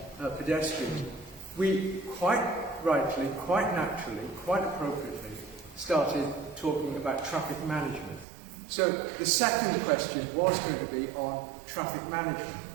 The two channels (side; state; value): left; drops out; at 8.2 s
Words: pedestrians, we quite rightly, quite naturally, quite appropriately started talking about traffic management. So the second question was going to be on traffic management.